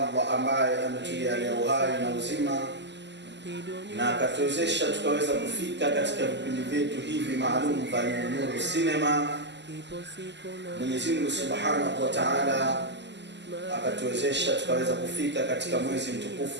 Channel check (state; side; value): late; left; 0.51 ms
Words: ambaye ametujalia uhai na uzima na akatuwezesha tukaweza kufika katika vipindi vyetu hivi maalum vya Nuru Cinema. Mwenyezi Mungu Subhanahu wa Ta'ala akatuwezesha tukaweza kufika katika mwezi